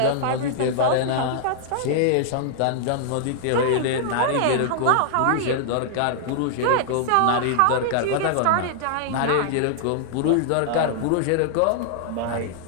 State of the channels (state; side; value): different; both; correlation -0.01